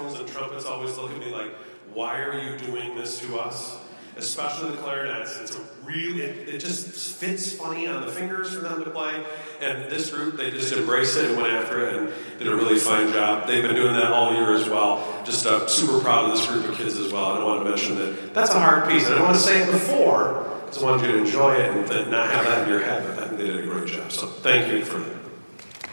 and trumpets always look at me like, why are you doing this to us? Especially the clarinets. It's a really, it just fits funny on the fingers for them to play. And this group, they just embraced it and went after it and did a really fine job. They've been doing that all year as well. Just super proud of this group of kids as well. And I want to mention that that's a hard piece. And I don't want to say it before, because I wanted you to enjoy it and then not have that in your head. But I think they did a great job. So thank you for that.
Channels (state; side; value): inverted; both; correlation -1.00